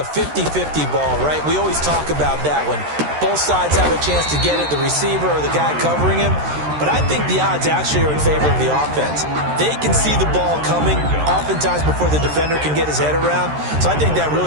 50-50 ball, right? We always talk about that when Both sides have a chance to get it, the receiver or the guy covering him. But I think the odds actually are in favor of the offense. They can see the ball coming oftentimes before the defender can get his head around. So I think that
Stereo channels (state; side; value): late; left; 13 ms